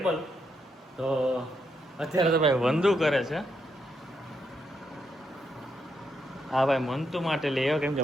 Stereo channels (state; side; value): normal; both; correlation 0.79